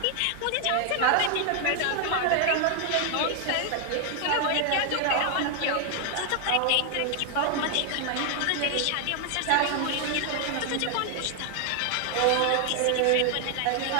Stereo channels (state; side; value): different; both; correlation 0.00